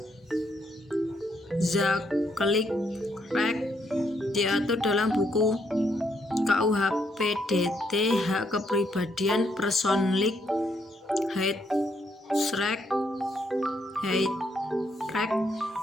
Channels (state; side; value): normal; both; correlation 0.74